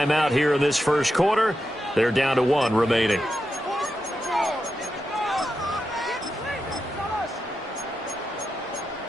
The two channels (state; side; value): normal; both; correlation 0.88